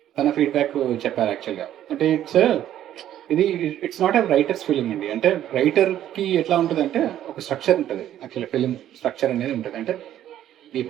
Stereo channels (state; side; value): quieter; left; 11.7 dB